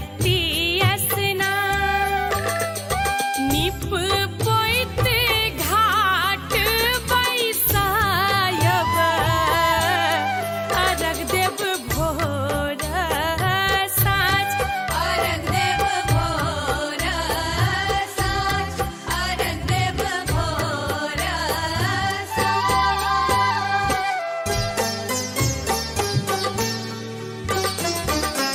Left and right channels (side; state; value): both; identical; correlation 1.00